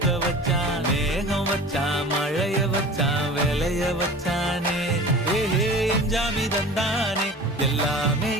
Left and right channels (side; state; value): both; normal; correlation 0.39